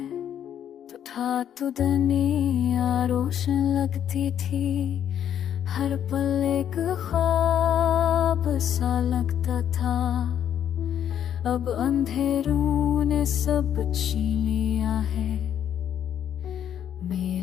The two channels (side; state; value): right; quieter; 9.7 dB